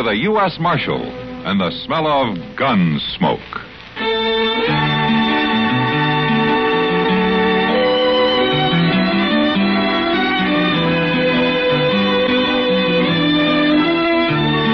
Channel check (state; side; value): identical; both; correlation 1.00